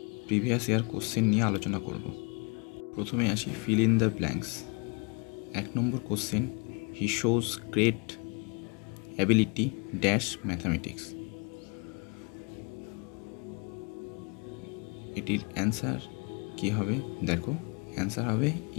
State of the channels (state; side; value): quieter; right; 33.5 dB